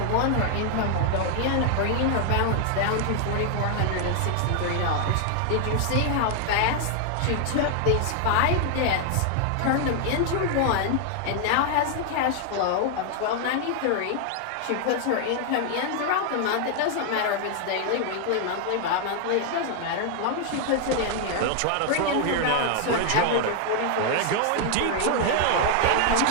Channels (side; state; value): both; different; correlation 0.00